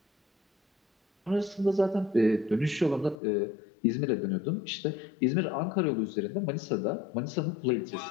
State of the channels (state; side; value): drops out; right; at 3.2 s